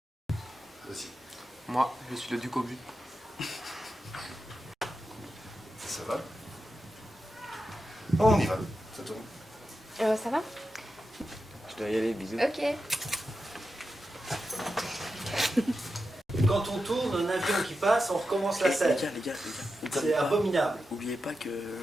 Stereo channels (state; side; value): normal; both; correlation 0.89